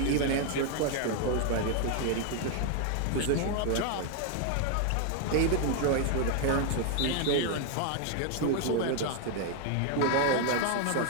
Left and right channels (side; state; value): both; different; correlation 0.00